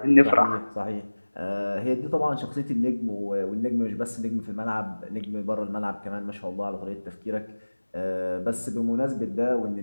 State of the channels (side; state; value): both; inverted; correlation -1.00